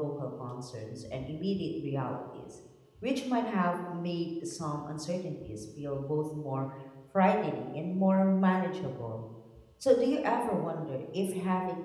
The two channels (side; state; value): both; identical; correlation 1.00